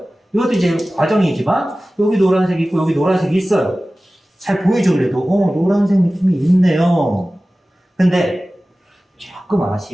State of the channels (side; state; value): both; normal; correlation 0.97